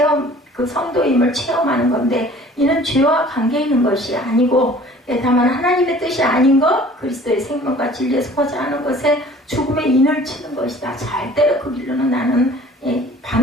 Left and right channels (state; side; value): normal; both; correlation 0.49